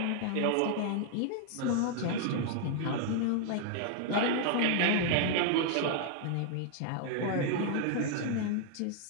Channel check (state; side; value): different; both; correlation 0.00